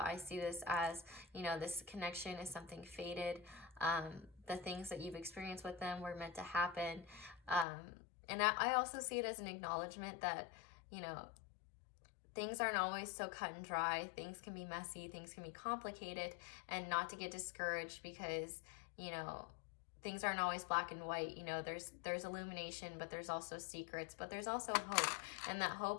see this as, you know, this connection is something fated. The things that you've experienced with them were meant to happen, and I also see it as an acknowledgement that, you know, things aren't always so cut and dry. Things can be messy, things can be complicated, and not to get discouraged because, you know, things aren't always black and white. You know, there's illumination, but there's also secrets, but there's also hope. And that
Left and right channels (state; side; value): drops out; right; at 7.7 s